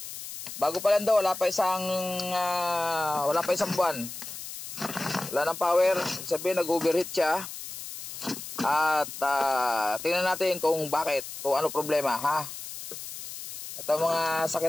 Bago pa lang daw, wala pa isang buwan. Wala nang power, sabihin nag-overheat siya. At tingnan natin kung bakit, kung ano problema, ha. Ito mga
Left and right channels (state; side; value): noise; left; hiss, 10 dB below the sound